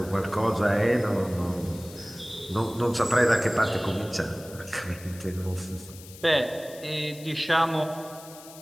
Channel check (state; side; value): noise; left; hiss, 18 dB below the sound